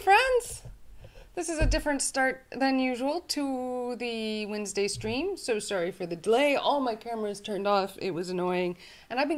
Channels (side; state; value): both; identical; correlation 1.00